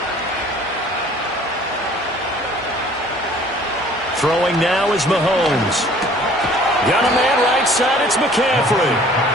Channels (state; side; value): normal; both; correlation 0.53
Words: Throwing now is Mahomes. Got a man right side, it's McCaffrey.